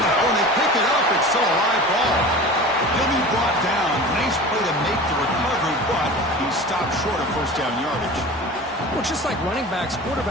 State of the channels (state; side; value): normal; both; correlation 0.36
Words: they pick it up, it's still a live ball. He'll be brought down. Nice play to make the recovery, but he stopped short of 1st down yardage. Well, just like running backs,